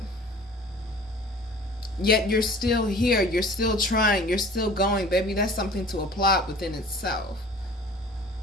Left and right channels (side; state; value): both; normal; correlation 0.46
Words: Yet you're still here. You're still trying. You're still going, baby. That's something to applaud within itself.